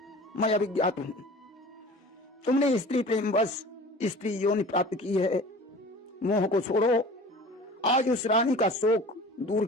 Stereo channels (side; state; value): both; normal; correlation 0.41